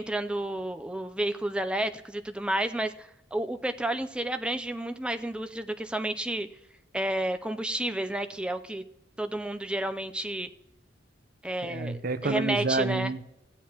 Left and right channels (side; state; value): both; normal; correlation 0.70